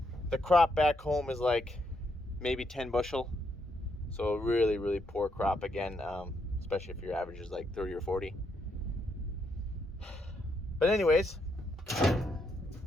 crop back home is like maybe 10 bushel. So really, really poor crop again, especially if your average is like 30 or 40. But anyways,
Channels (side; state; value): both; normal; correlation 0.77